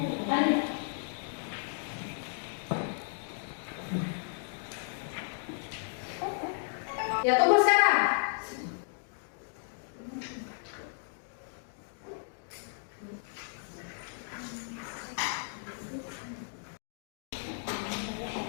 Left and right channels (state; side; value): silent; right; digital silence